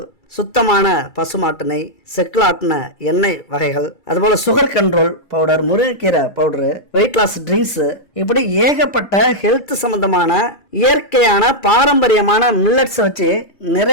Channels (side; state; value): right; late; 2.3 ms